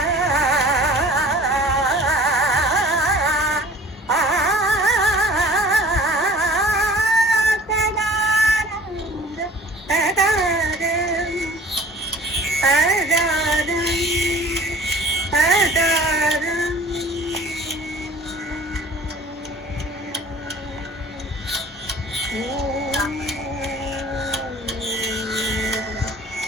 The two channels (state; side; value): normal; both; correlation 0.47